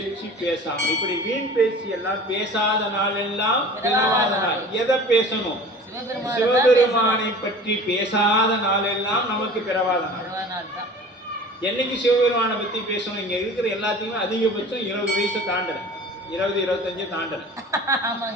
பேசாமல், இப்படி வீண் பேச்சு எல்லாம் பேசாத நாள் எல்லாம் பிறவாத நாள். எதை பேசணும்? சிவபெருமானை பற்றி பேசாத நாள் எல்லாம் நமக்கு பிறவாத நாள். என்னைக்கு சிவபெருமானை பத்தி பேசணும்? இங்க இருக்கிற எல்லாத்தையுமே அதிகபட்சம் 20 வயசு தாண்டல, 20-25 தாண்டல.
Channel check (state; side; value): normal; both; correlation 0.42